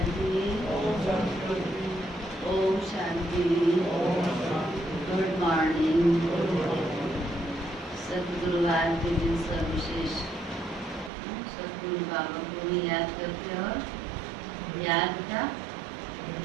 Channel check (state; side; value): drops out; left; at 11.1 s